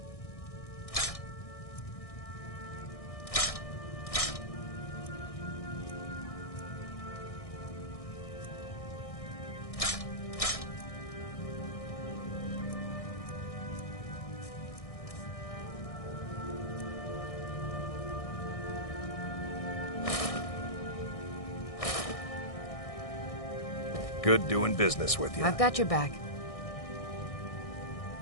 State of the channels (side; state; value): right; late; 1.6 ms